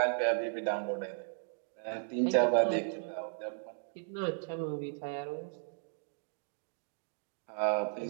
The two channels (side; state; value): left; silent; digital silence